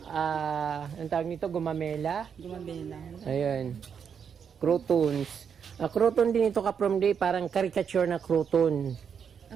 tawag nito, gumamela. gumabela. Ayun. Croutons. Crouton din ito ka-from day, parang caricature na crouton.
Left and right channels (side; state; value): left; quieter; 7.2 dB